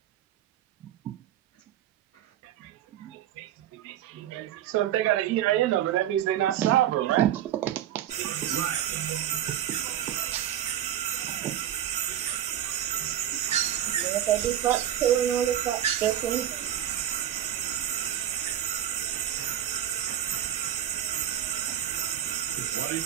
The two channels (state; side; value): quieter; left; 11.2 dB